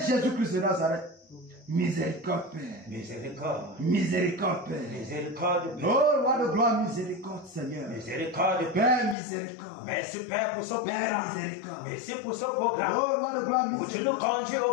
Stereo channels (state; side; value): drops out; right; at 9.2 s